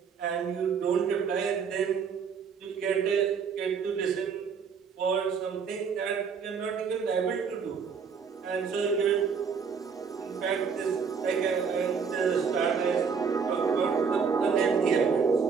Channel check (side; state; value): left; quieter; 6.1 dB